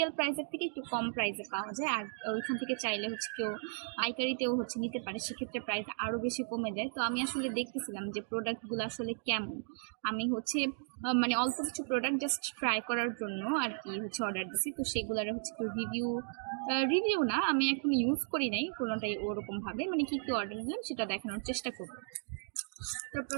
প্রাইসের থেকে একটু কম প্রাইসে পাওয়া যায়, আর ওইখান থেকে চাইলে হচ্ছে কেউ পাইকারিতেও হচ্ছে নিতে পারে, সেক্ষেত্রে প্রাইস আরও বেশি কমে যায়। তো আমি আসলে দেখতেছিলাম যে প্রোডাক্টগুলো আসলে কেমন। আমি হচ্ছে মানে অল্প কিছু প্রোডাক্ট জাস্ট ট্রাই করার জন্য আর কি হচ্ছে অর্ডার দিছি। তো সেগুলোর হচ্ছে একটু রিভিউ না, আমি এখন ইউজ করি নাই কোনোটাই ওরকমভাবে, মানে কি কি অর্ডার দিলাম সেটা দেখানোর চেষ্টা করবো। তো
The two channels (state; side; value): silent; left; digital silence